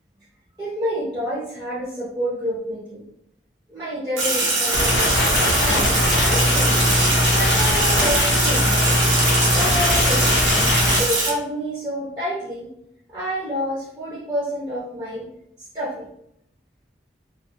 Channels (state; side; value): normal; both; correlation 0.33